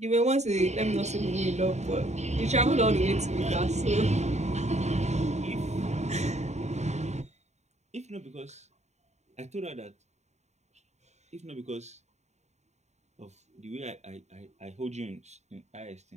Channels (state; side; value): late; left; 0.33 ms